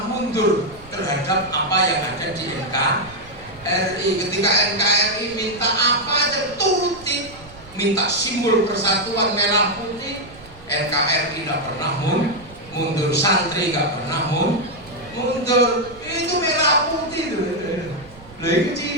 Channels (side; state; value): right; noise; rumble, 21 dB below the sound